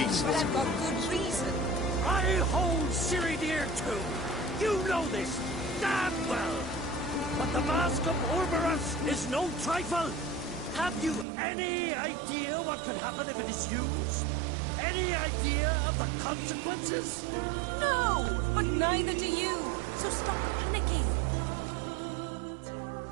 I've got good reason. I hold Ciri dear too. You know this damn well. But the Mask of Orberus is no trifle. Have you any idea what could happen if it is used? Any idea of the consequences? No, but neither do you. So stop panicking.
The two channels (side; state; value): left; drops out; at 11.2 s